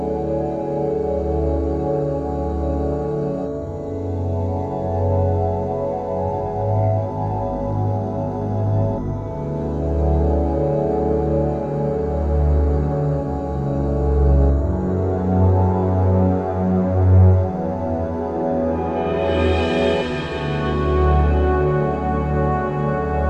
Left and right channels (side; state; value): both; identical; correlation 1.00